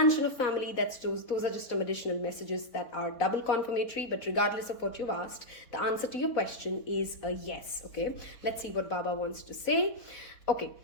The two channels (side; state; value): right; late; 4.0 ms